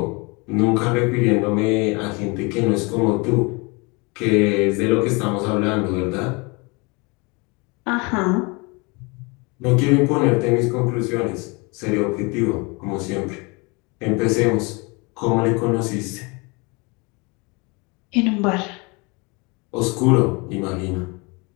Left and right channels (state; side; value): quieter; right; 28.7 dB